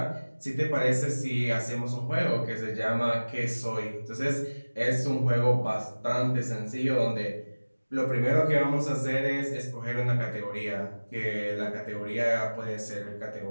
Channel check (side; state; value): both; inverted; correlation -1.00